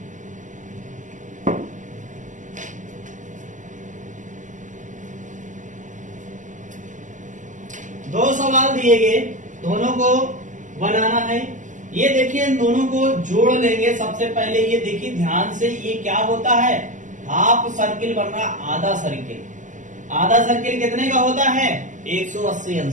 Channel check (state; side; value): late; left; 0.37 ms